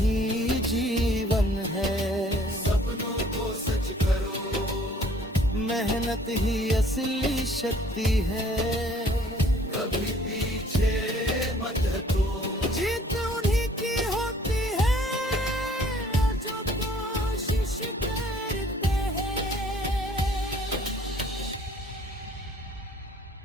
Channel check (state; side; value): normal; both; correlation 0.57